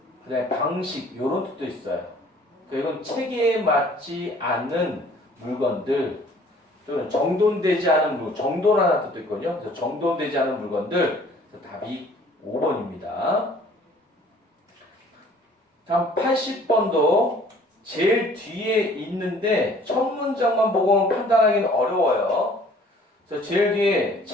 그다음에 방식 이런 뜻도 있어요. 그러니까 이건 체계에 맞지 않는 물건들 또는 정돈되지 않은 물건, 정돈하는 뜻도 있거든요. 그래서 정돈되지 않은 물건들. 그래서 답이 5번입니다. 다음 80번도 제일 뒤에 있는데 첫 문장만 보고는 판단하기는 어려워요. 그래서 제일 뒤에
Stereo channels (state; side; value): normal; both; correlation 0.54